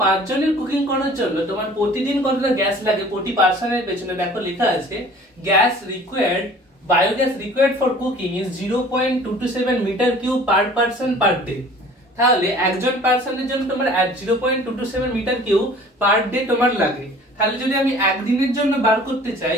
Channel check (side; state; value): both; normal; correlation 0.48